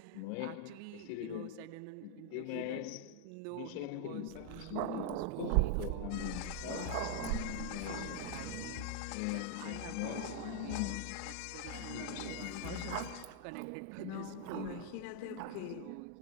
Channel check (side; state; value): both; different; correlation 0.00